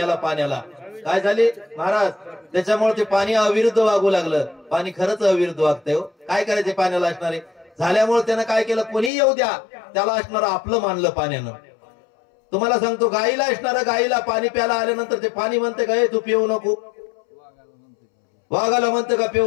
पाण्याला काय झाली महाराज? त्याच्यामुळे ते पाणी अविरुद्ध वागू लागलं. पाणी खरंच अविरुद्ध वागतंय. काय करायचे पाण्याला असणारे? झाल्यामुळे त्यानं काय केलं? कोणी येऊ द्या, त्याला असणारं आपलं मानलं पाण्यानं. तुम्हाला सांगतो, गाईला असणारं, गाईला पाणी प्यायला आल्यानंतर ते पाणी म्हणते का, तू पिऊ नको? वाघाला म्हणते का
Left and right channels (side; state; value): right; drops out; at 9.1 s